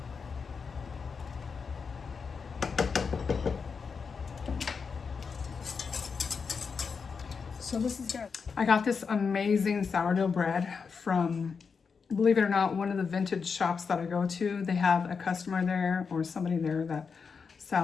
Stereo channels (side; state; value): right; quieter; 5.5 dB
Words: So this is good. I got this amazing sourdough bread from, believe it or not, one of the vintage shops that I go to. They have a customer there or somebody there that